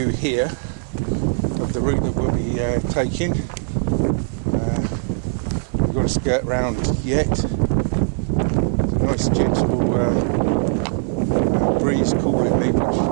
here of the route that we'll be taking. We've got to skirt round yet. It's a nice gentle breeze cooling me, which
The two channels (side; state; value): left; silent; digital silence